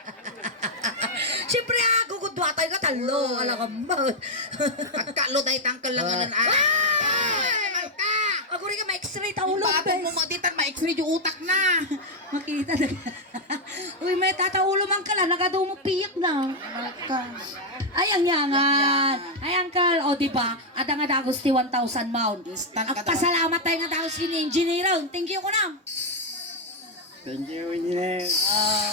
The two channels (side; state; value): both; normal; correlation 0.01